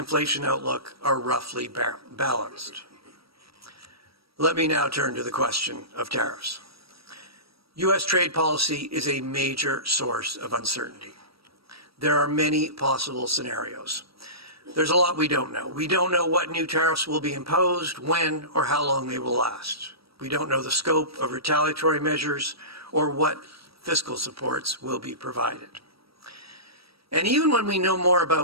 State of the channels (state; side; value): late; left; 0.76 ms